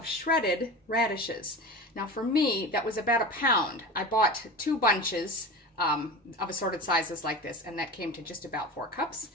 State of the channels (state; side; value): normal; both; correlation 0.30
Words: shredded radishes. Now for me, that was about 1 pound. I bought 2 bunches of assorted sizes like this, and that came to just about 4 cups,